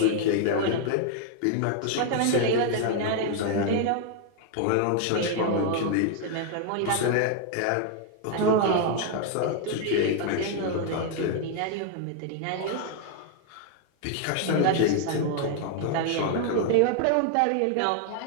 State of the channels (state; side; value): different; both; correlation 0.00